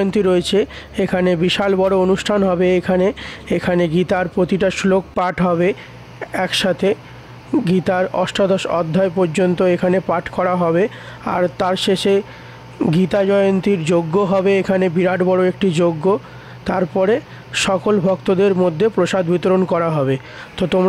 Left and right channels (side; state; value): both; identical; correlation 1.00